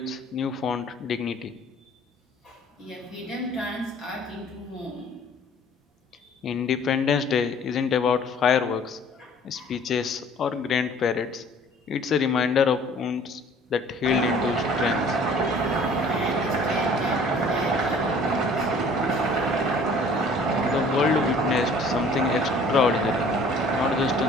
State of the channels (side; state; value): both; normal; correlation 0.52